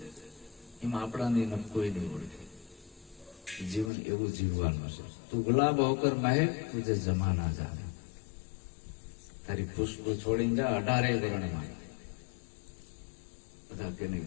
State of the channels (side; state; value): right; drops out; at 3.9 s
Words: એમાં આપણાની કોઈ નહીં ઓળખે. જીવન એવું જીવવાનું છે. તું ગુલાબ હોકર મહેક, તુજે જમાના જાને. તારી ખુશ્બુ છોડીને જા 18 વર્ણમાં. બધા કે નહીં